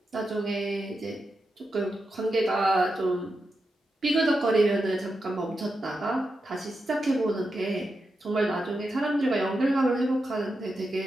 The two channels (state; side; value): normal; both; correlation 0.88